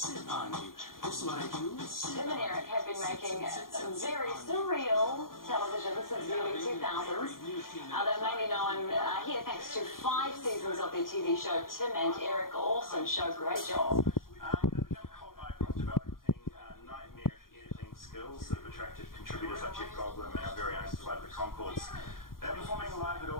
on you. This is what I do. Tim and Eric have been making very surreal television since the early 2000s. They're mainly known here thanks to 5 seasons of their TV show Tim and Eric. Awesome show, great job. They've become cult icons, developing nightmarish editing skills that have attracted contributors like Jeff Goldblum and our very own Flight of the Conchords. They're performing live at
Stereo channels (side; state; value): right; late; 0.91 ms